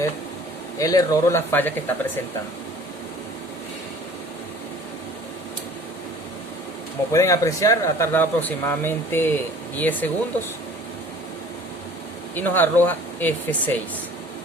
el error o la falla que está presentando. Como pueden apreciar, ha tardado aproximadamente 10 segundos y nos arroja F6.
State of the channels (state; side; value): normal; both; correlation 0.48